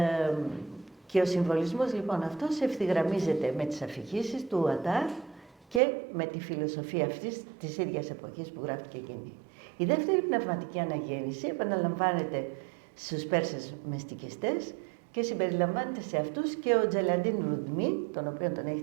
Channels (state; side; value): drops out; left; at 5.8 s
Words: Και ο συμβολισμός λοιπόν αυτός ευθυγραμμίζεται με τις αφηγήσεις του Ατάρ και με τη φιλοσοφία αυτής της ίδιας εποχής που γράφτηκε εκείνη. Η δεύτερη πνευματική αναγέννηση επαναλαμβάνεται στους Πέρσες μεστικιστές και συμπεριλαμβάνεται σε αυτούς και ο Τζελαντίν Ρουντμί, τον οποίο τον